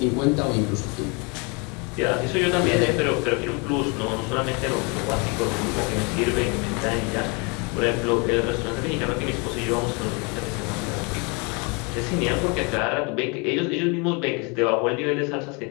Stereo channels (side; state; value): right; quieter; 31.4 dB